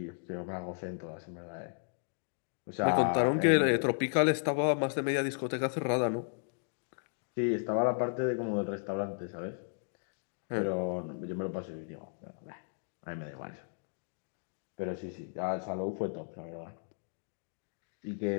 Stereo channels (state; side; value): silent; right; digital silence